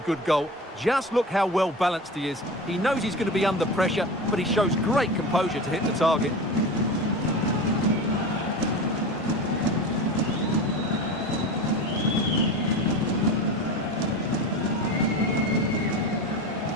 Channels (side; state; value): both; normal; correlation 0.29